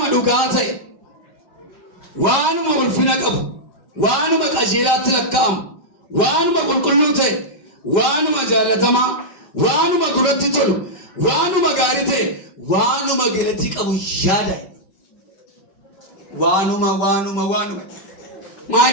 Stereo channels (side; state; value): right; late; 5.0 ms